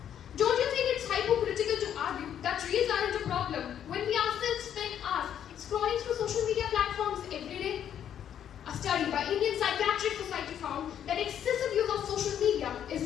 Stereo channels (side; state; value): right; quieter; 9.6 dB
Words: Don't you think it's hypocritical to argue that reels aren't a problem when we ourselves spend hours scrolling through social media platforms every day? A study by Indian Psychiatric Society found that excessive use of social media